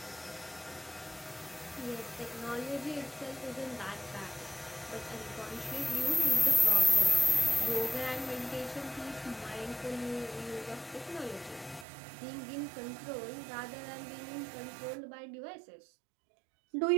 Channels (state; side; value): drops out; left; at 11.9 s